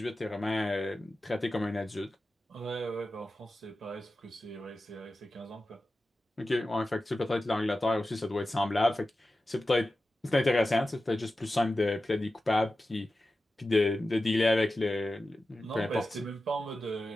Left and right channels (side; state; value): both; normal; correlation 0.93